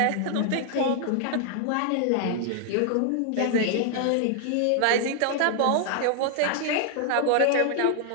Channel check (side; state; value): both; different; correlation 0.00